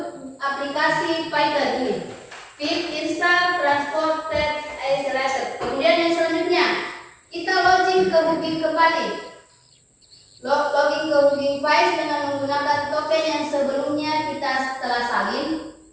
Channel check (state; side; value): identical; both; correlation 1.00